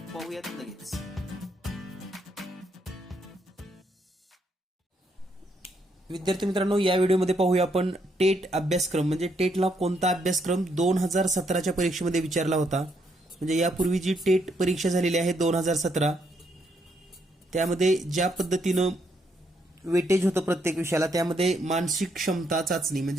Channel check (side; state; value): both; normal; correlation 0.75